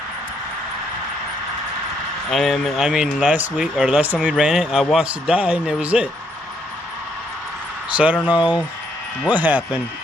I mean last time we ran it, I watched it die and it was it. So I don't know what happened.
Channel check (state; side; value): normal; both; correlation 0.72